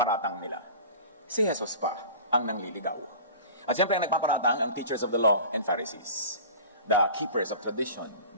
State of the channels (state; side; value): inverted; both; correlation -0.39